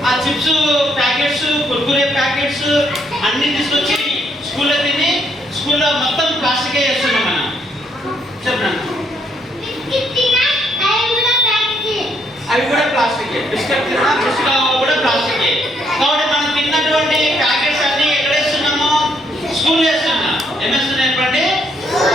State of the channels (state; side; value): normal; both; correlation 0.72